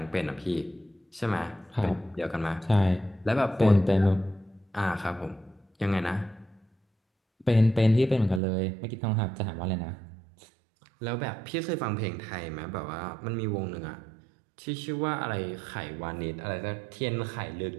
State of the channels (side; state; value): left; drops out; at 8.4 s